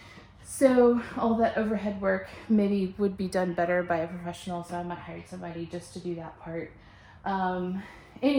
So all that overhead work maybe would be done better by a professional, so I might hire somebody just to do that part.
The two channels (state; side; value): identical; both; correlation 1.00